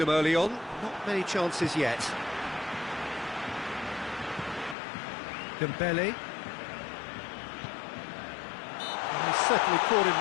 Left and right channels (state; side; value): drops out; right; at 4.8 s